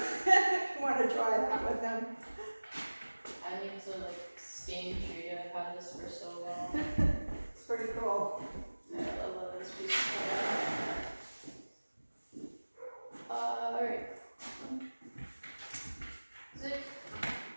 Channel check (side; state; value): both; inverted; correlation -1.00